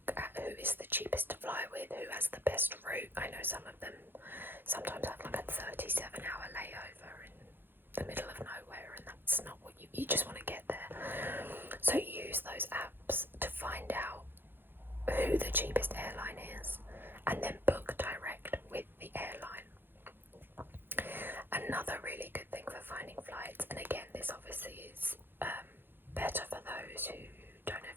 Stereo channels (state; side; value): late; left; 0.10 ms